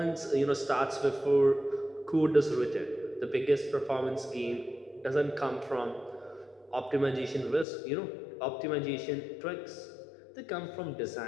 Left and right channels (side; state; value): right; drops out; at 7.7 s